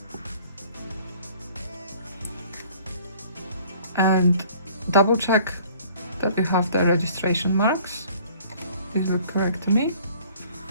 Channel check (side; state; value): both; inverted; correlation -0.54